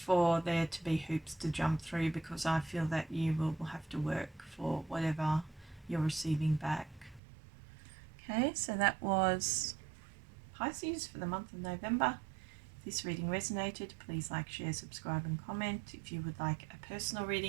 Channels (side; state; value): left; drops out; at 7.2 s